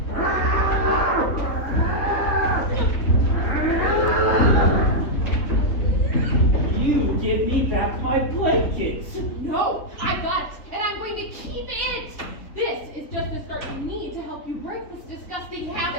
You give me back my blankets. No, I got it, and I'm going to keep it. This is just the start you need to help you break this disgusting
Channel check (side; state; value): right; late; 3.4 ms